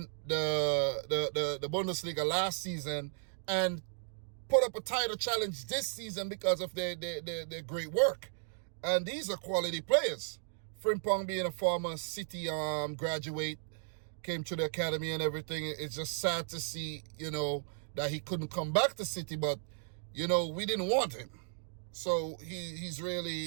the Bundesliga last season and put up a title challenge this season because of their great work. And these are quality players. Frimpong being a former City graduate, came to the academy and everything. It's just sad to see, that he couldn't come back to City, but, we didn't want him. So he's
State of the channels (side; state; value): left; silent; digital silence